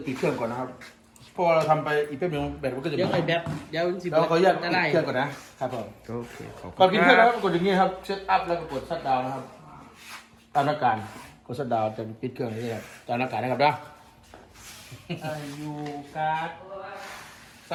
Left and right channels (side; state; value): both; identical; correlation 1.00